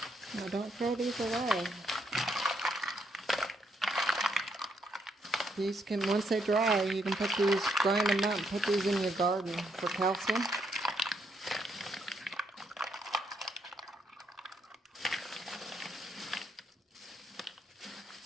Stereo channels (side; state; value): both; normal; correlation 0.75